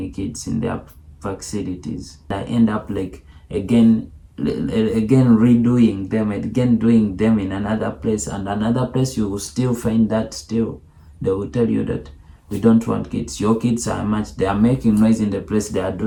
kids in their facilities. I end up again redoing them, again doing them in another place, and another place you will still find that still. They will tell you that we don't want kids. Your kids are much, they are making noise in the place, they are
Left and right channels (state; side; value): identical; both; correlation 1.00